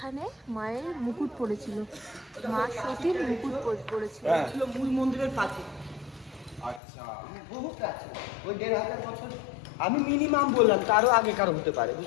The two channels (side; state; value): right; drops out; at 6.8 s